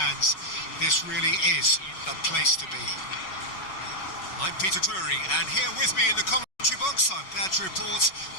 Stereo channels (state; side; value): late; right; 5.4 ms